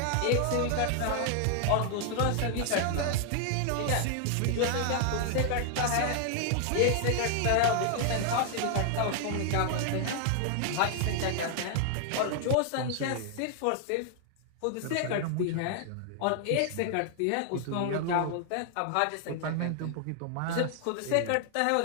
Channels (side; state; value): both; different; correlation 0.00